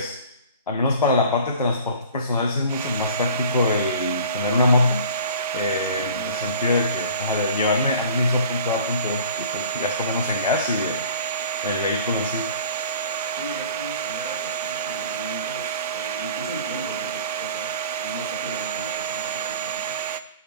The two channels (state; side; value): inverted; both; correlation -0.45